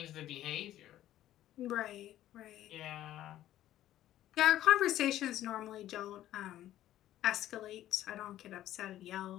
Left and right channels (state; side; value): quieter; right; 13.2 dB